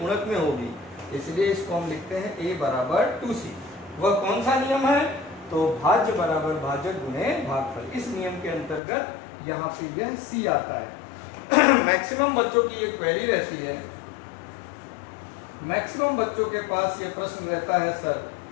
में होगी, इसलिए इसको हम लिखते हैं a बराबर 2c। वह कौन सा नियम है? तो भाज्य बराबर भाजक गुणे भागफल। इस नियम के अंतर्गत यहाँ पे यह c आता है। मैक्सिमम बच्चों की एक क्वेरी रहती है, मैक्सिमम बच्चों के पास ये प्रश्न रहता है, सर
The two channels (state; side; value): drops out; right; at 8.8 s